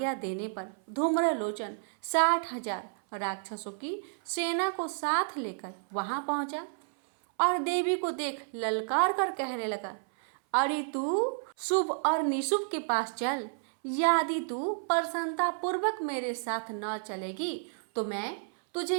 देने पर धूम्रलोचन 60,000 राक्षसों की सेना को साथ लेकर वहां पहुंचा और देवी को देख ललकार कर कहने लगा, अरे तू शुभ और निशुभ के पास चल। यदि तू प्रसन्नता पूर्वक मेरे साथ न चलेगी तो मैं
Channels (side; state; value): left; silent; 57 dB below the other